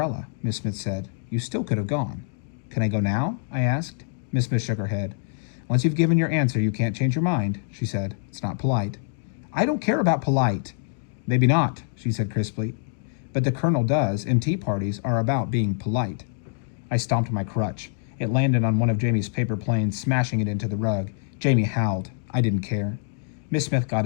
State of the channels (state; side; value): silent; right; digital silence